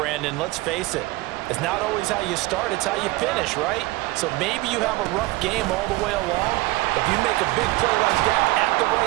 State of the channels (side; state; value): left; quieter; 20.4 dB